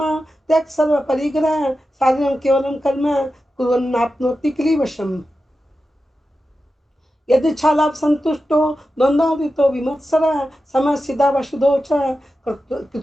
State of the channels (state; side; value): normal; both; correlation 0.91